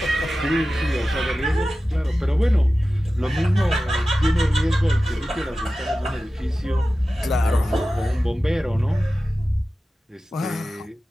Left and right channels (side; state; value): both; normal; correlation 0.95